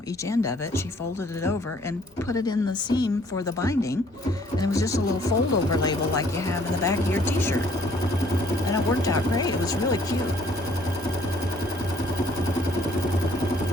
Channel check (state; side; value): normal; both; correlation 0.60